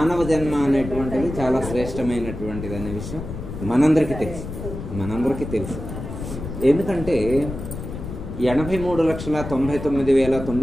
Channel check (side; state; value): left; noise; rumble, 8 dB below the sound